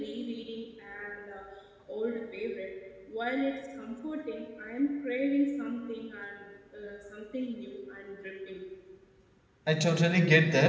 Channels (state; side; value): identical; both; correlation 1.00